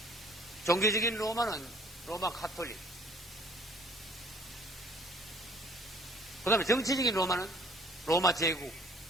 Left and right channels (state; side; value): normal; both; correlation 0.56